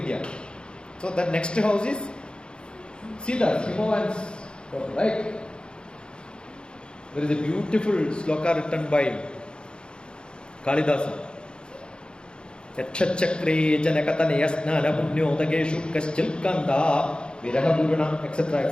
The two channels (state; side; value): late; right; 0.051 ms